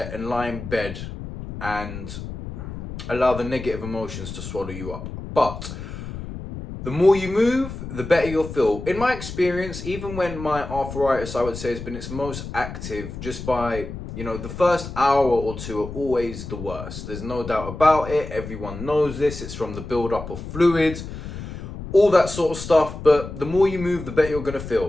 and lie in bed and allow the negative emotions to swallow you up. But the more you move, the better you'll feel. In my experience, even when my arthritis, I would say, has been its most active, just by, the first hour or 2 are always the worst. There's no doubt about it. Everyone knows this. It's from the buildup of fluids, all that sort of stuff. But the more you move, the better you're going to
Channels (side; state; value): left; noise; rumble, 9 dB below the sound